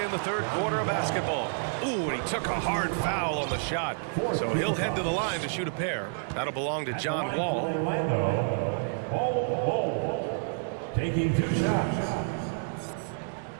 in the third quarter of basketball. Ooh, and he took a hard foul on the shot. So he'll head to the line to shoot a pair. That'll belong to John Wall. Orlando, Bol Bol, taking 2 shots.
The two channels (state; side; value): silent; left; digital silence